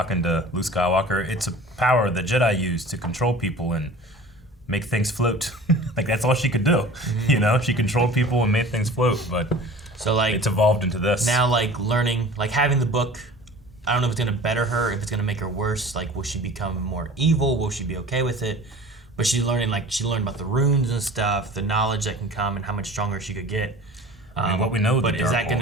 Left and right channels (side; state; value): both; normal; correlation 0.41